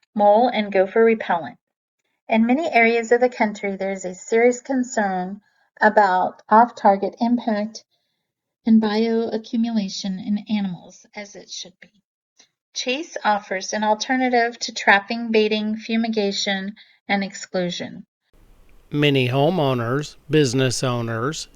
Mole and Gopher Repellent. In many areas of the country, there is a serious concern about off-target impact and bioaccumulation in animals, as it should be. Chase offers an alternative to trapping, baiting, fumigation, and exclusion. Many homeowners, business owners,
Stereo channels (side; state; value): both; identical; correlation 1.00